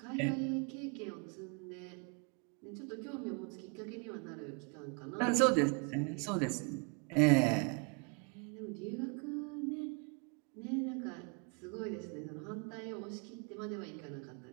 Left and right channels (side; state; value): left; quieter; 35.3 dB